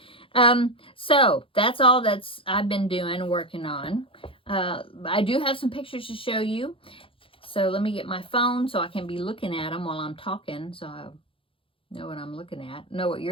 so that's all I've been doing, working on. I do have some pictures to show you. So let me get my phone so I can be looking at them while I'm talking, so I know what I'm looking at, know what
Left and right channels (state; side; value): late; right; 0.26 ms